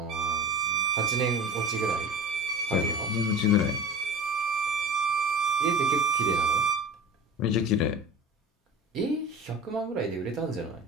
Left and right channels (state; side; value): normal; both; correlation 0.34